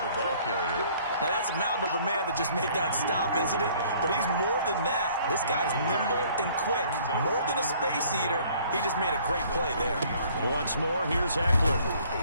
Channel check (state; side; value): inverted; both; correlation -0.58